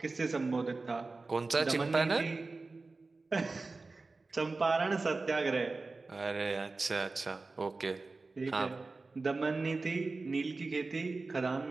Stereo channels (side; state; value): left; quieter; 3.7 dB